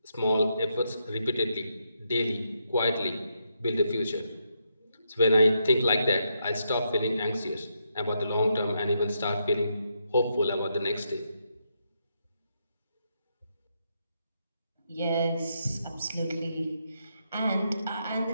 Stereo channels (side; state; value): both; inverted; correlation -0.80